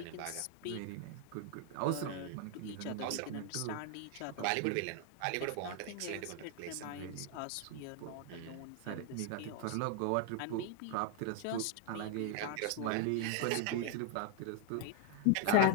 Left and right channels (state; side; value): different; both; correlation 0.01